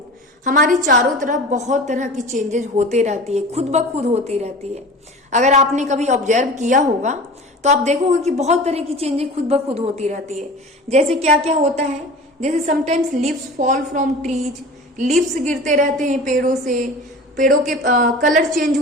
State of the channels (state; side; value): normal; both; correlation 0.37